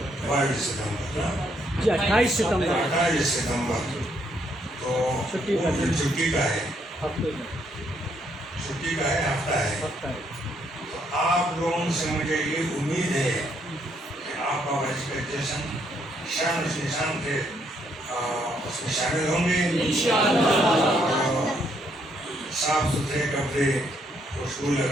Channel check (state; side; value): normal; both; correlation 0.72